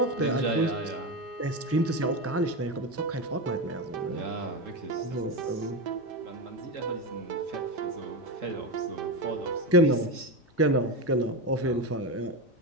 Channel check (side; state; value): both; normal; correlation 0.15